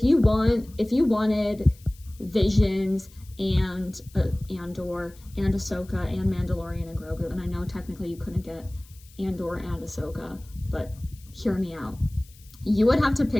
you wanted Visions and Andor and Ahsoka and Mandalorian and Grogu, and I know technically you couldn't get Andor and Ahsoka, but hear me out. You would have to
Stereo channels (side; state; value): left; noise; hiss, 25 dB below the sound